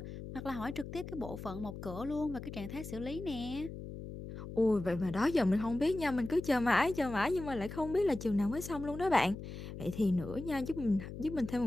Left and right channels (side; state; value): left; noise; hum, 10 dB below the sound